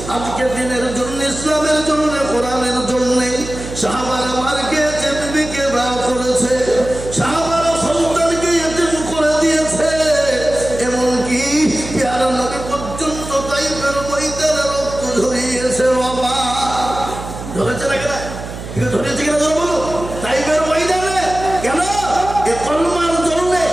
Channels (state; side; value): noise; right; hum, 10 dB below the sound